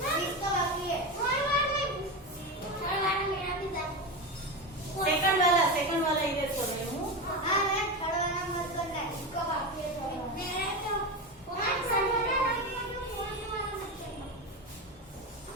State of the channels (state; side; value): normal; both; correlation 0.19